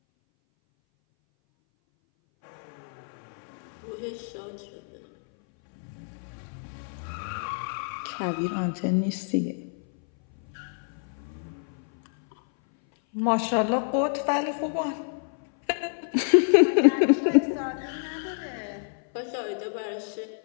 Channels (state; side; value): silent; right; 58 dB below the other